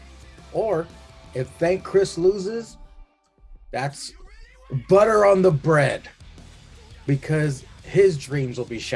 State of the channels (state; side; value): identical; both; correlation 1.00